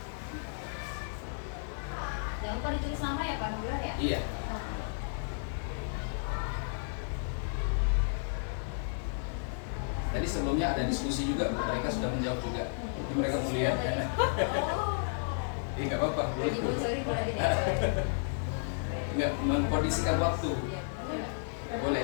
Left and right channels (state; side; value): silent; right; digital silence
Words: Jangan lupa ditulis nama ya Pak Nurul ya. Iya. Tadi sebelumnya ada diskusi juga, Bu. Mereka sudah menjawab juga. Jadi mereka mau lihat kan. Oh, Iya, nggak apa-apa. jadi Bu, sorry boleh tidak? Nggak mengkondisikan waktu. Iya. Boleh